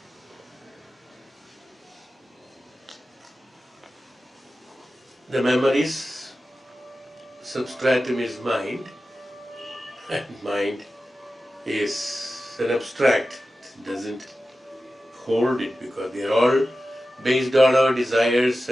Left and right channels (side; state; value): both; normal; correlation 0.94